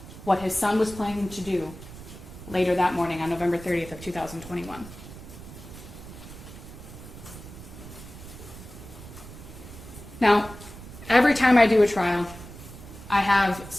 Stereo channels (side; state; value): right; noise; rumble, 15 dB below the sound